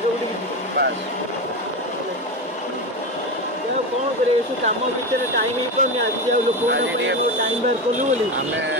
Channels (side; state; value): both; normal; correlation 0.19